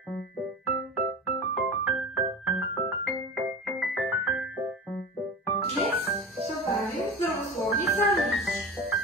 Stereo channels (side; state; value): both; normal; correlation 0.31